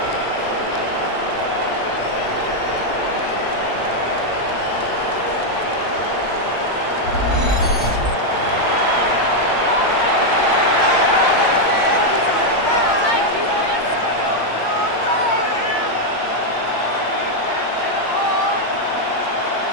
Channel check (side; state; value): right; late; 8.6 ms